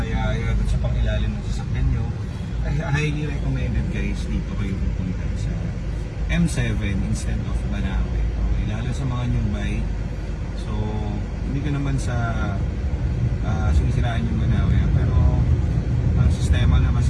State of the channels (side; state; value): both; identical; correlation 1.00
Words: sa pangilalim ng sasakyan nyo, ay highly recommended guys, dito kayo pupunta sa M7 instead of Banawe. Okay, lalo sa mga new buy. So, hindi ko naman sa sinisiraan yung Banawe, pero ang sistema na